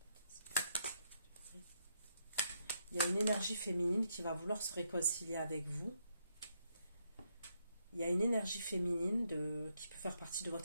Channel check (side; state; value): both; inverted; correlation -0.77